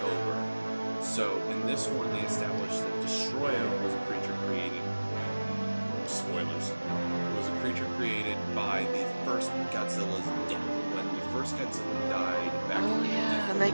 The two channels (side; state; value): both; inverted; correlation -1.00